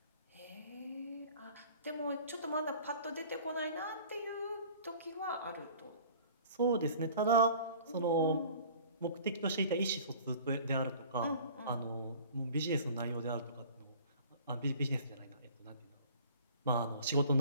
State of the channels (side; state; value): both; inverted; correlation -0.47